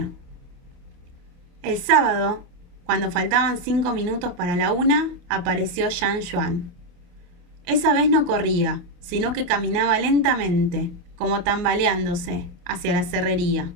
El sábado, cuando faltaban 5 minutos para la 1, apareció Jean Juan. Esa vez no corría, sino que caminaba lentamente, como tambaleándose, hacia la cerrería.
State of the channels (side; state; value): left; late; 28 ms